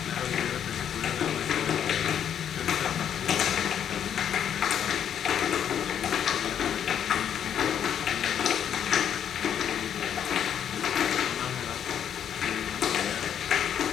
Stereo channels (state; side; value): quieter; right; 9.0 dB